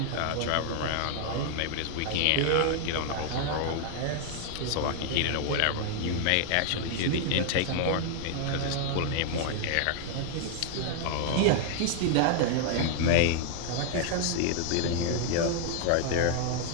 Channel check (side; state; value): both; different; correlation 0.00